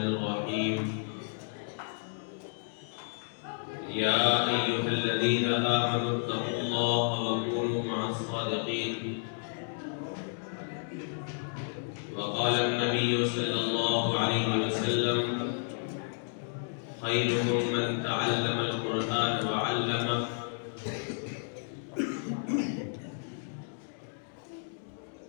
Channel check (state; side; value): silent; right; digital silence